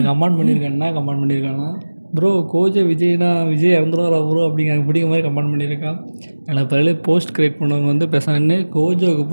கமெண்ட் பண்ணியிருக்கான்னா ப்ரோ கோஜோ விஜய் இறந்துருவாரா ப்ரோ அப்படிங்கிற மாதிரி கமெண்ட் பண்ணியிருக்கான். எனக்கு பதில் போஸ்ட் க்ரியேட் பண்ணவங்க வந்து பேசான்னு கோஜோவுக்கு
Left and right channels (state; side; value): inverted; both; correlation -1.00